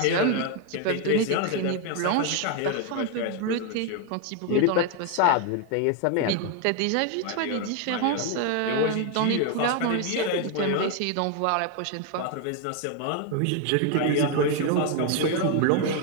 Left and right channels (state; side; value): different; both; correlation 0.01